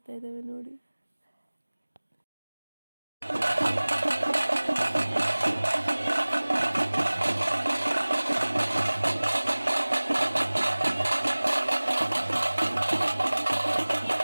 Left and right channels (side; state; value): both; inverted; correlation -1.00